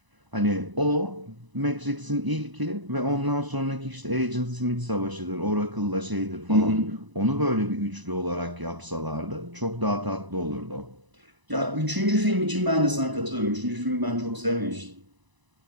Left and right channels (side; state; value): left; late; 1.0 ms